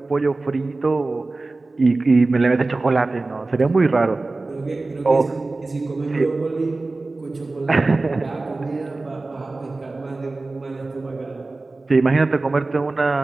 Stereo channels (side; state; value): left; quieter; 3.4 dB